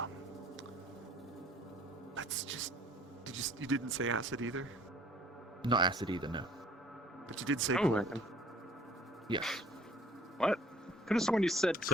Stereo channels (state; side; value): normal; both; correlation 0.54